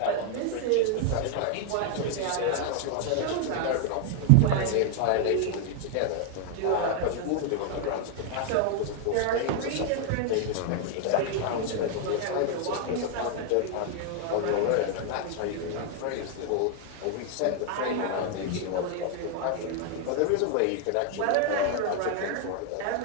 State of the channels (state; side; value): different; both; correlation 0.00